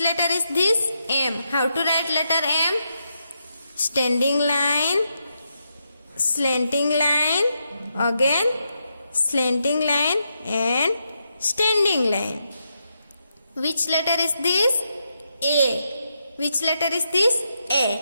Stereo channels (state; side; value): inverted; both; correlation -0.83